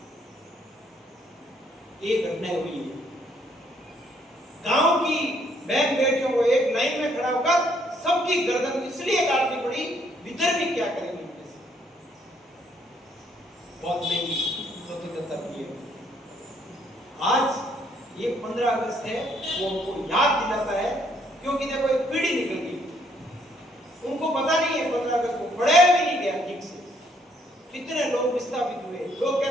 ये घटना हुई है। गांव की बहन बेटियों को एक लाइन में खड़ा होकर सबकी गर्दन इसलिए काटनी पड़ी, भीतर भी क्या करेंगे उनके से। बहुत महंगी स्वतंत्रता की है। आज ये 15 अगस्त है, वो हमको याद दिलाता है, क्योंकि देखो एक पीढ़ी निकल गई, उनको पता नहीं है 15 अगस्त को, पढ़ाया भी नहीं गया ठीक से। कितने लोग विस्थापित हुए, लोग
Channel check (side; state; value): both; normal; correlation 0.68